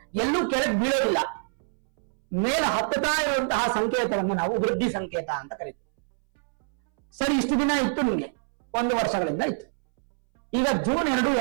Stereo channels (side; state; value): left; silent; 61 dB below the other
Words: ಎಲ್ಲೂ ಕೆಳಗೆ ಬೀಳೋದಿಲ್ಲ, ಮೇಲೆ ಹತ್ತುತ್ತಾ ಇರುವಂತಹ ಸಂಕೇತವನ್ನು ನಾವು ವೃದ್ಧಿ ಸಂಕೇತ ಅಂತ ಕರಿತೀವಿ. ಸರಿ, ಇಷ್ಟು ದಿನ ಇತ್ತು ನಿಮ್ಗೆ, 1 ವರ್ಷಗಳಿಂದ ಇತ್ತು. ಈಗ ಜೂನ್ 2,